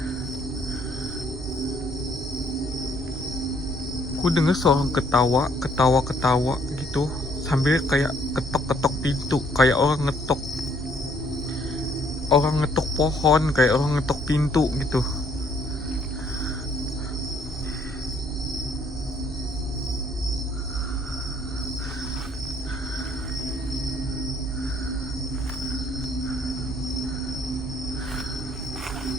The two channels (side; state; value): both; normal; correlation 0.65